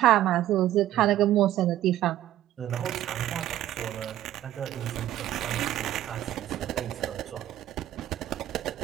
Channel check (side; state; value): left; quieter; 13.2 dB